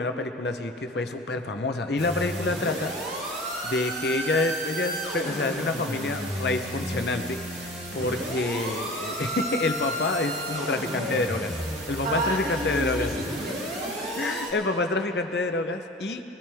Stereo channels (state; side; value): normal; both; correlation 0.39